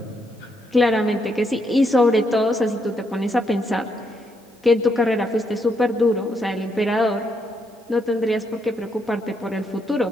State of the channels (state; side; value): normal; both; correlation 0.77